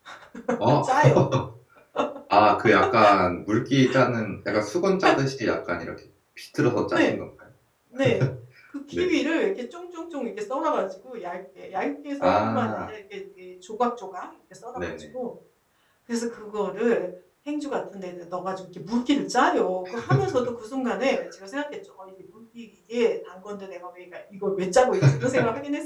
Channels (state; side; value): identical; both; correlation 1.00